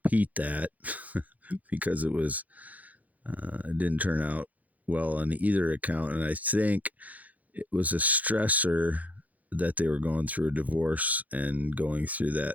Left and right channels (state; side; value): late; left; 0.077 ms